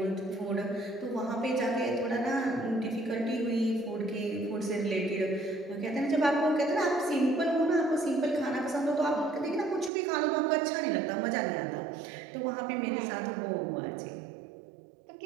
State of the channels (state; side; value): drops out; left; at 9.9 s